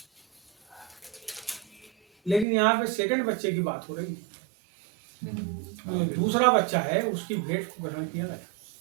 लेकिन यहाँ पे सेकंड बच्चे की बात हो रही है। जो दूसरा बच्चा है उसकी भेंट को ग्रहण किया गया।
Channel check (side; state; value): left; drops out; at 2.5 s